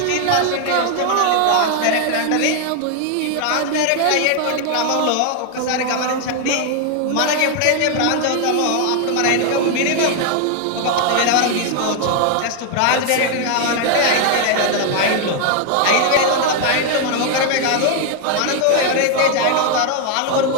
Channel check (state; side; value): different; both; correlation 0.00